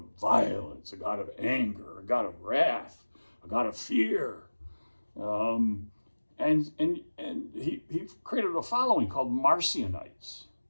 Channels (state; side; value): inverted; both; correlation -1.00